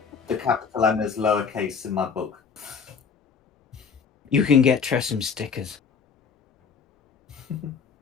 the capital M is lowercase in my book. You can get Tressim stickers.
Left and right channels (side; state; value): right; quieter; 6.0 dB